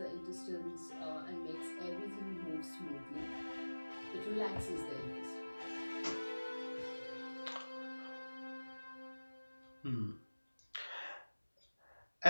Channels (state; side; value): inverted; both; correlation -1.00